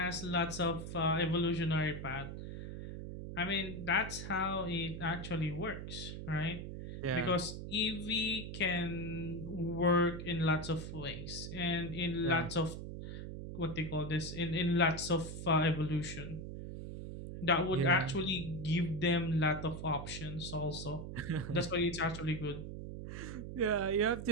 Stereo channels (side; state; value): right; noise; hum, 8 dB below the sound